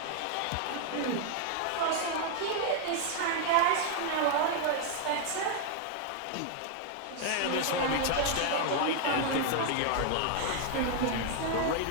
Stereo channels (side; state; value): both; different; correlation 0.00